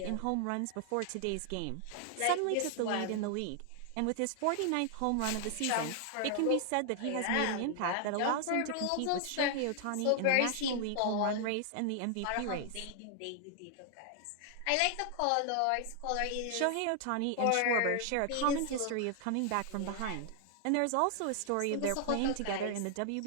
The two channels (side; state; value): both; different; correlation 0.00